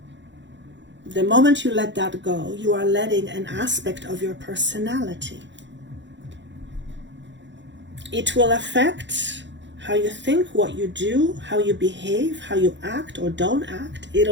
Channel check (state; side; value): late; left; 0.52 ms